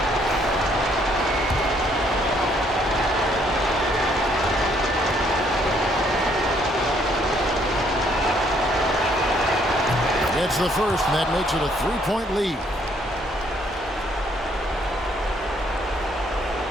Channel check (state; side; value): normal; both; correlation 0.67